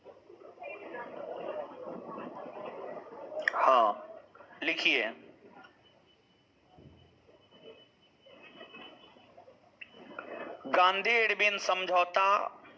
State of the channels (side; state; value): both; identical; correlation 1.00